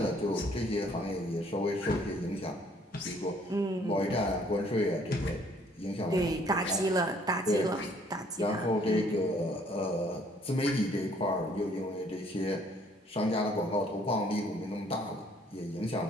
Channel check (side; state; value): both; normal; correlation 0.61